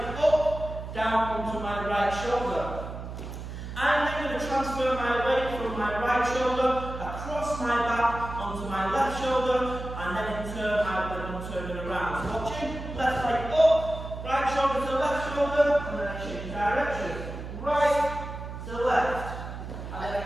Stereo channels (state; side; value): noise; right; hum, 9 dB below the sound